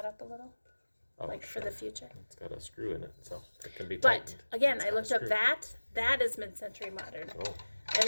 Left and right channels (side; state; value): both; inverted; correlation -1.00